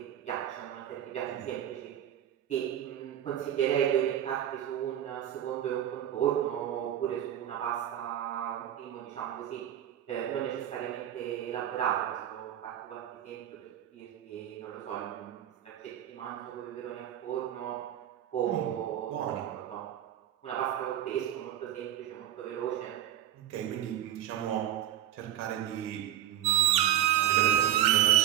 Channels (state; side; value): quieter; left; 11.5 dB